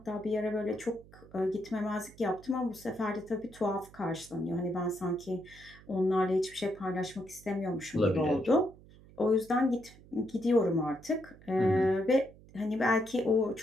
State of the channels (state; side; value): noise; right; hum, 22 dB below the sound